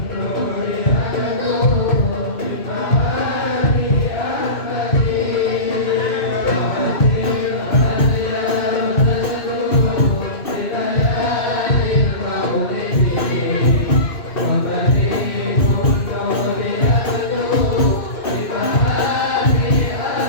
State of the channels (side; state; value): right; late; 2.5 ms